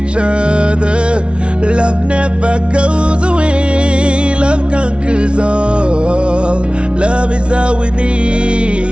other. Love never goes away, love conquers all. Love is all we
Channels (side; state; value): left; late; 0.058 ms